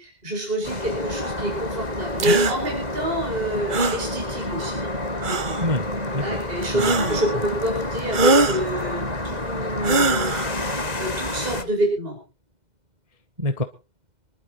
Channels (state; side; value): late; left; 2.0 ms